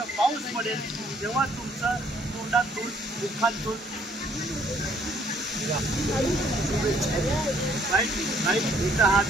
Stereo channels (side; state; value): both; normal; correlation 0.64